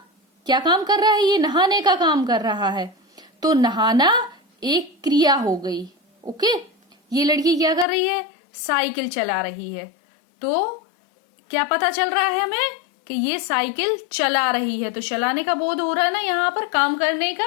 क्या काम कर रहा है? ये नहाने का काम कर रहा है, तो नहाना एक क्रिया हो गई। ओके, ये लड़की क्या कर रही है? साइकिल चला रही है। तो क्या पता चल रहा है हमें? कि ये साइकिल चला रही है। तो चलाने का बोध हो रहा है ना यहाँ पर, काम करने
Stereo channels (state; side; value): drops out; right; at 7.9 s